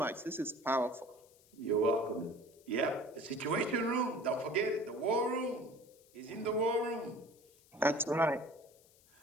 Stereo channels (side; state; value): left; noise; hiss, 28 dB below the sound